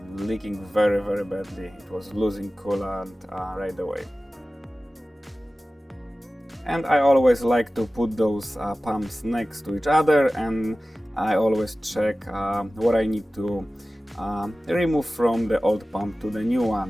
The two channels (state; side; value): normal; both; correlation 0.96